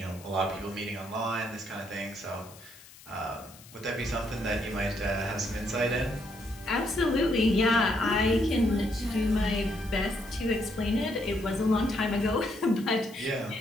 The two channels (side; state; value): left; noise; hiss, 21 dB below the sound